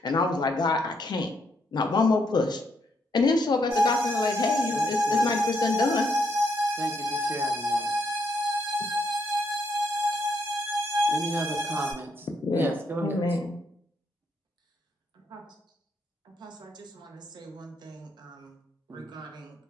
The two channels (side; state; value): both; normal; correlation 0.75